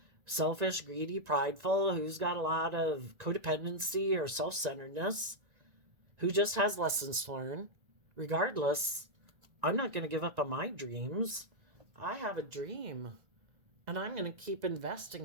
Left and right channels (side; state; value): left; late; 1.9 ms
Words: selfish, greedy, prideful, who's got a lot of codependency or self-centeredness, who just has lessons to learn. Regardless, I'm not going to give up on my dreams. I have a dream, and I'm going to keep